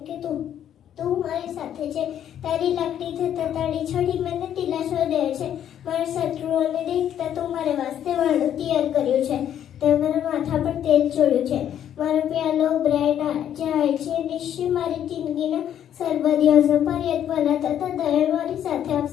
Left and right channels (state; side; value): quieter; right; 10.1 dB